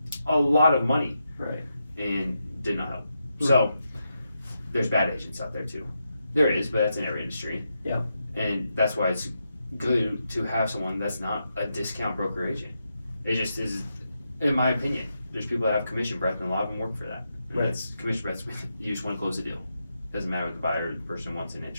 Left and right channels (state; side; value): inverted; both; correlation -0.85